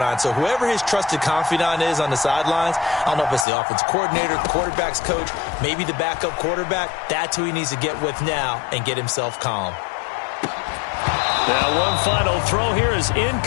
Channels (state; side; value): drops out; right; at 3.5 s